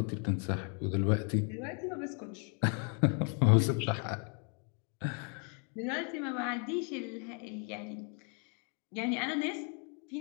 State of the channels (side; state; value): right; quieter; 39.5 dB